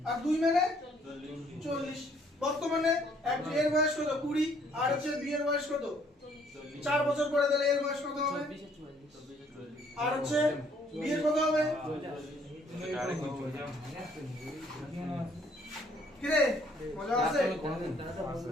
আর 2 মানে 40 বর্তমানে এর বয়স কত 20 আর হচ্ছে বি এর বয়স কত 4 বছর পরে তাহলে এর বয়স কত হবে আর হচ্ছে বি এর কত হবে কি রে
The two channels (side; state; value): both; normal; correlation 0.63